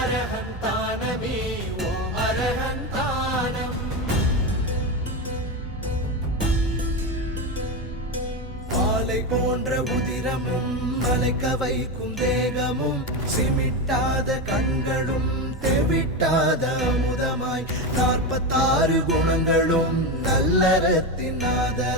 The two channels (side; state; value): both; normal; correlation 0.15